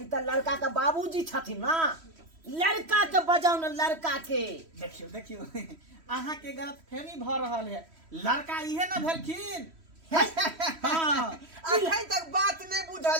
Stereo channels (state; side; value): late; left; 3.1 ms